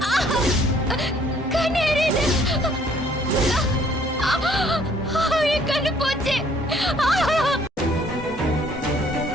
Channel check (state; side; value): normal; both; correlation 0.61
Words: கண்ணு எரியுது. என் கண்ணு போச்சு.